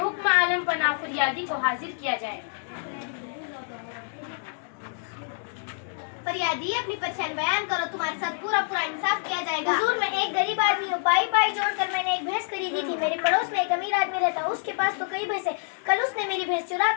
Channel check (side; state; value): right; silent; 60 dB below the other